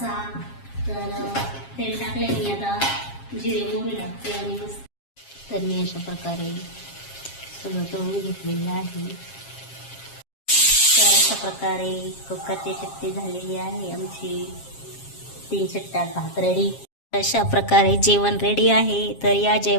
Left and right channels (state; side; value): late; right; 7.4 ms